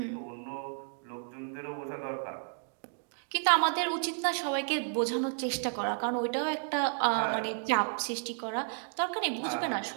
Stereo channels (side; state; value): left; silent; 56 dB below the other